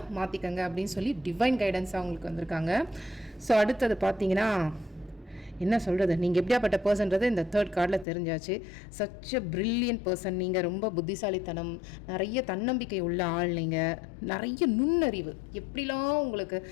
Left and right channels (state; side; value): drops out; right; at 8.1 s